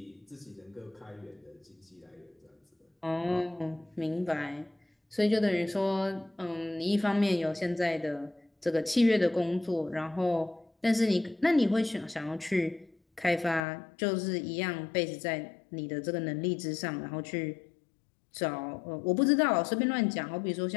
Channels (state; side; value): drops out; right; at 13.6 s